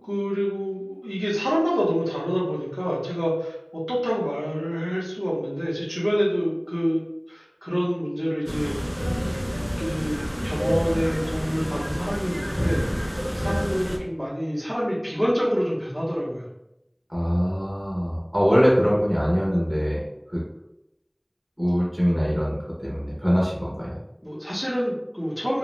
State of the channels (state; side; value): identical; both; correlation 1.00